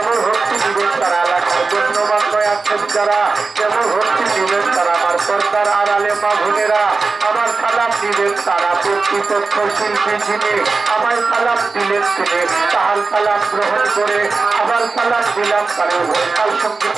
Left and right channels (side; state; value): left; quieter; 4.1 dB